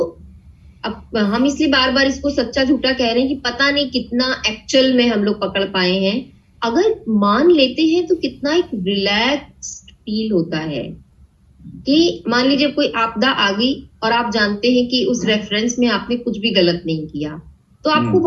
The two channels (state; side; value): identical; both; correlation 1.00